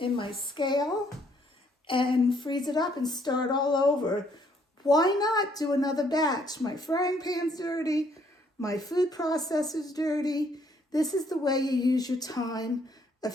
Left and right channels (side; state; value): both; normal; correlation 0.67